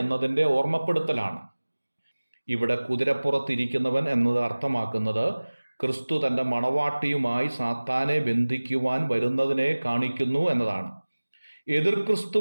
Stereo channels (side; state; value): both; inverted; correlation -1.00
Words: എന്നതിൻ്റെ ഓർമ്മപ്പെടുത്തലാണ്. ഇവിടെ കുതിരപ്പുറത്തിരിക്കുന്നവൻ എന്നത് അർത്ഥമാക്കുന്നത് ക്രിസ്തു തൻ്റെ മണവാട്ടിയുമായി സാത്താനെ ബന്ധിക്കുവാൻ വരുന്നതിനെ കാണിക്കുന്നു എന്നതാണ്. എതിർ